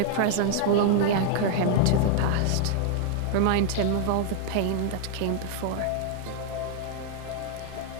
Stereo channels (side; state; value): both; different; correlation 0.00